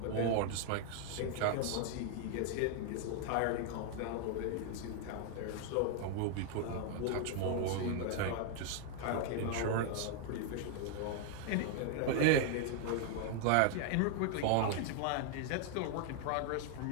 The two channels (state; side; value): different; both; correlation 0.00